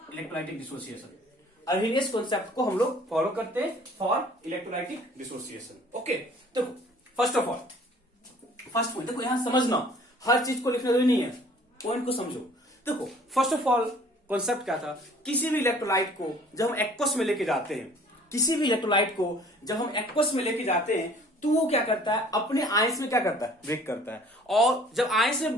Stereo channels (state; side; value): normal; both; correlation 0.53